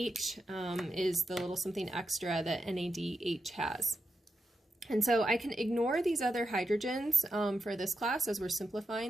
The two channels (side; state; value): both; normal; correlation 0.87